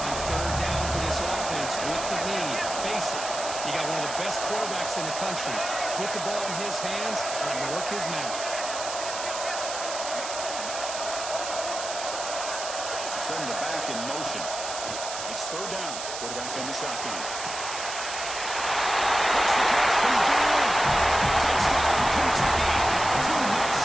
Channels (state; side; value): noise; right; hiss, 7 dB below the sound